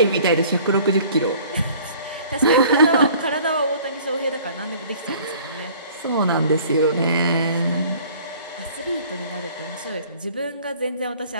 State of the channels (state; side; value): inverted; both; correlation -0.51